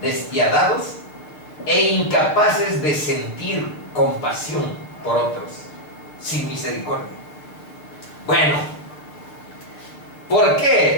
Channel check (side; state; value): right; late; 6.5 ms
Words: e incapaces de sentir compasión por otros, sin misericordia. Bueno, ¿por